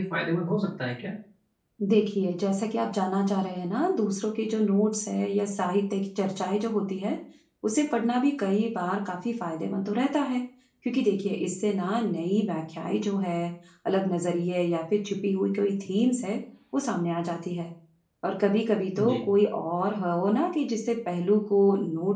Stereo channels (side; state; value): both; identical; correlation 1.00